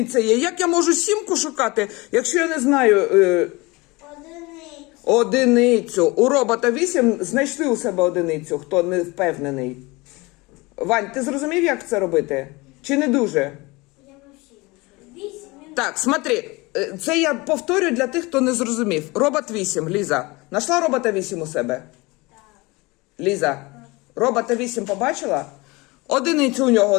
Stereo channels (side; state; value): right; quieter; 23.9 dB